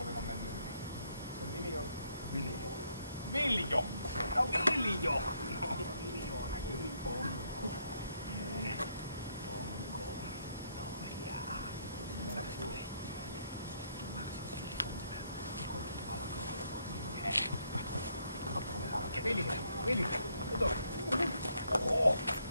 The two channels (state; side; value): inverted; both; correlation -0.72